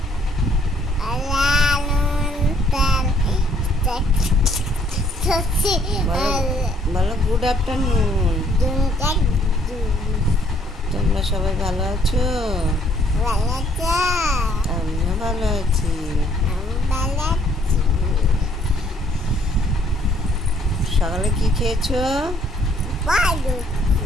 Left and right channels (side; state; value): both; normal; correlation 0.64